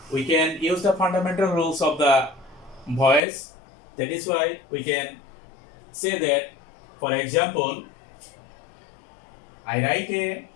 we can use the fundamental rules of the voice. That is why we can say that, for example, I write a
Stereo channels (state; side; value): drops out; right; at 3.2 s